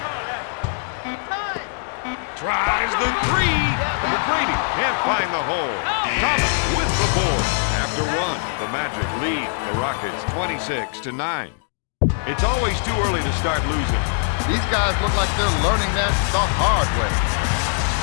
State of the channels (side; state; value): right; silent; digital silence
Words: Tries the 3. McGrady can't find the hole. Thomas with the board. After 1, the Magic lead the Rockets 26-9. It's always too early to start losing. These guys look like they're learning that the hard way.